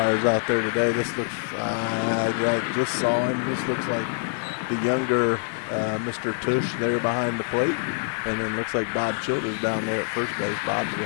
out there today. This looks, I just saw him. This looks like the younger Mr. Tush there behind the plate. And then looks like Bob Childers down there at first base. Bob's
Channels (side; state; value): right; silent; digital silence